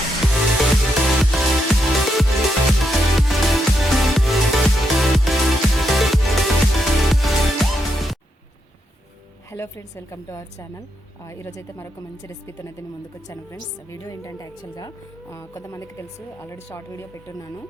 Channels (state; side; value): normal; both; correlation 0.81